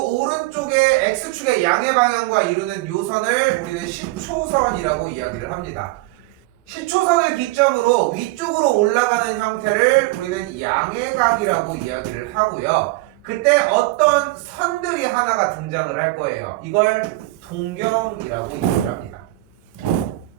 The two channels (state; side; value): quieter; left; 20.3 dB